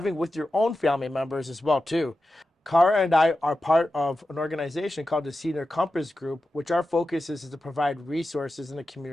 with your own family members as well too. Cara and I are part of an organization called the Senior Compass Group, which our focus is to provide resources in the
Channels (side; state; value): both; normal; correlation 0.92